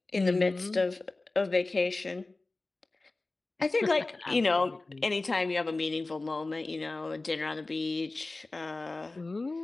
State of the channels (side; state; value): right; quieter; 3.2 dB